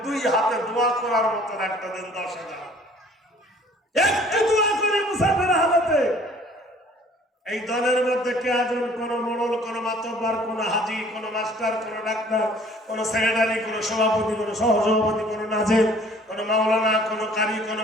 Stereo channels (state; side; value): normal; both; correlation 0.54